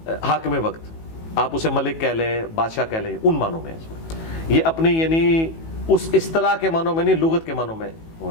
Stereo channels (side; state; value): right; late; 18 ms